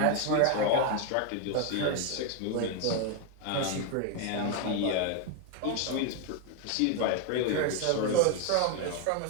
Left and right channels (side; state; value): both; different; correlation 0.01